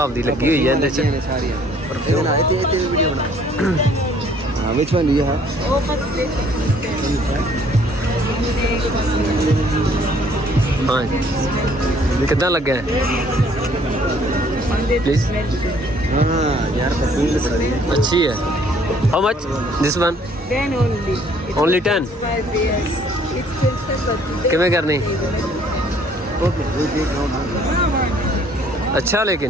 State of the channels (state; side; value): normal; both; correlation 0.60